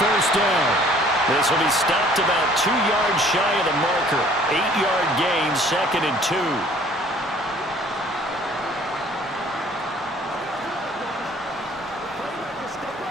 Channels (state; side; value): normal; both; correlation 0.55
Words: down. This will be stopped about 2 yards shy of the marker. 8-yard gain, 2nd and 2.